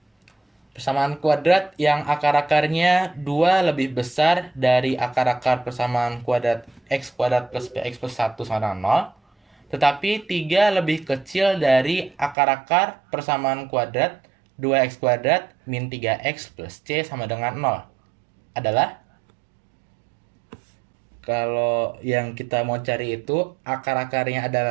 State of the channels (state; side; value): drops out; left; at 12.4 s